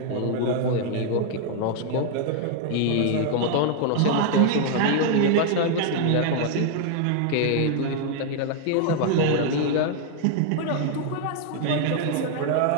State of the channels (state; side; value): different; both; correlation 0.00